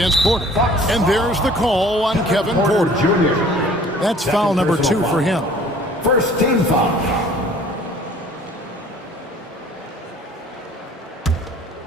Porter. And there's the call on Kevin Porter. That's foul number 2 for him. First team foul.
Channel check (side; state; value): both; normal; correlation 0.51